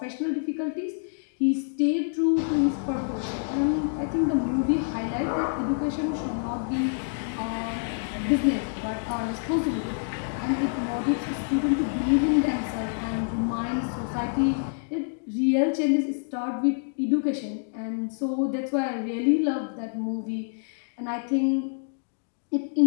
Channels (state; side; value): silent; right; digital silence